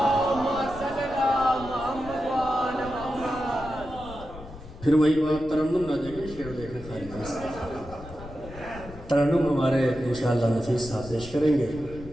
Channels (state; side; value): noise; left; rumble, 15 dB below the sound